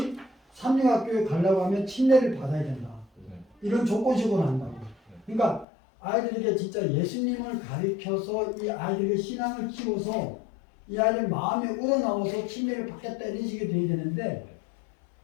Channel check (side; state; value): right; drops out; at 5.7 s